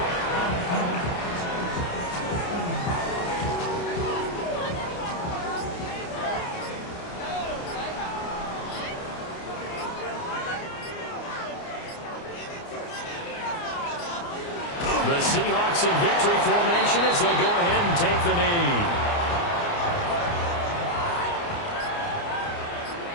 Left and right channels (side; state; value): right; late; 29 ms